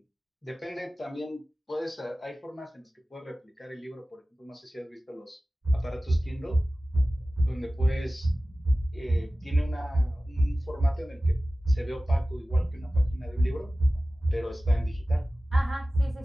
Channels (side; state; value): both; normal; correlation 0.97